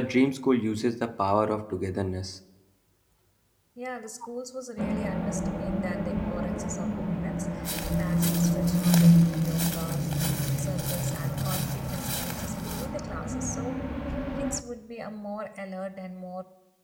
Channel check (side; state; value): both; identical; correlation 1.00